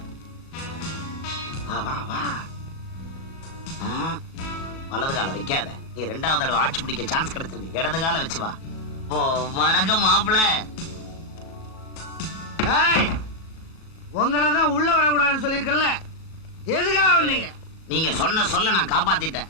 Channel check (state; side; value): late; right; 37 ms